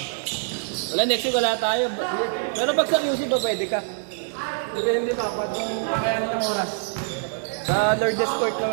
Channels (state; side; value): silent; left; digital silence